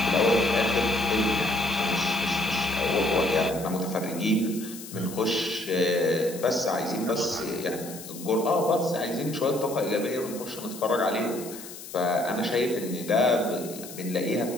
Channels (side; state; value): left; noise; hiss, 14 dB below the sound